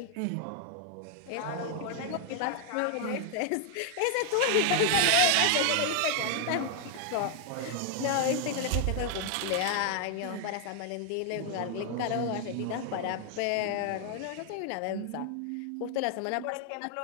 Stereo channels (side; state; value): both; different; correlation 0.00